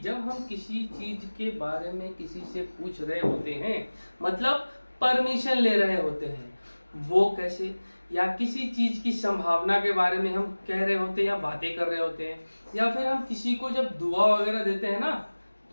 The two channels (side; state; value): both; inverted; correlation -1.00